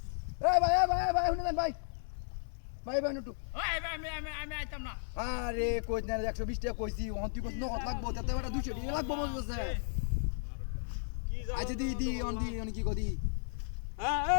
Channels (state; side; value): silent; right; digital silence